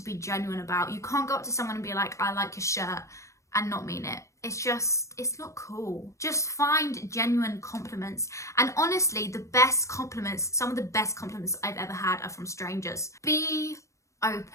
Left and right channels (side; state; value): right; late; 0.15 ms